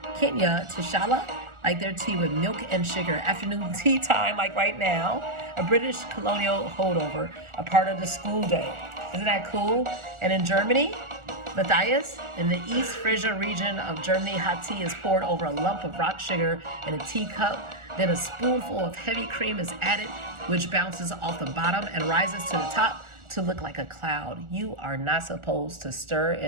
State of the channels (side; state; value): left; late; 1.4 ms